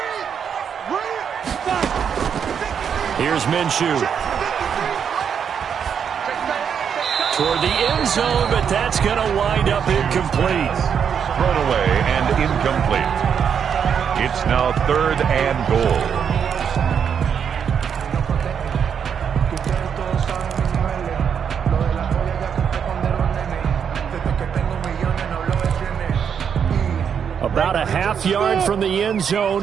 Here's Minshew. Toward the end zone, but that's going to wind up incomplete. Thrown away and incomplete. It's now 3rd and goal. About a half yard from the end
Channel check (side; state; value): left; quieter; 7.5 dB